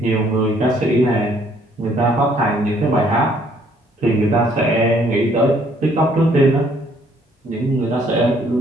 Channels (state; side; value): normal; both; correlation 0.64